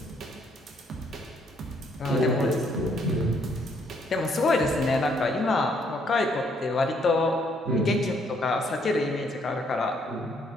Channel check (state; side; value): normal; both; correlation 0.69